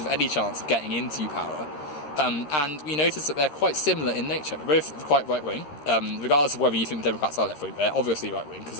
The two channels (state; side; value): late; right; 13 ms